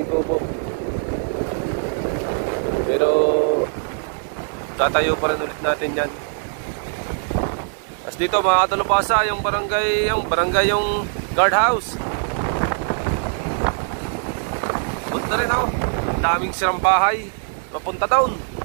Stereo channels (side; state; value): left; silent; digital silence